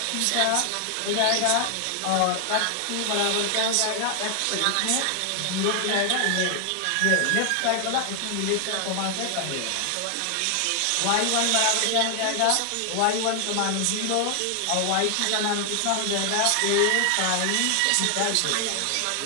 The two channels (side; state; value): both; different; correlation 0.00